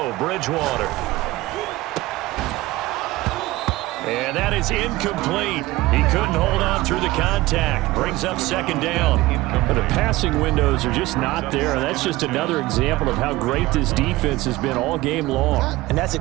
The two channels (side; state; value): left; quieter; 18.9 dB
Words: Bridgewater. And that is incomplete. He couldn't hold on through the contact. Brings up 2nd down. But the passing windows are just not there, and that's just another example of how great this defense has been all game long. And that's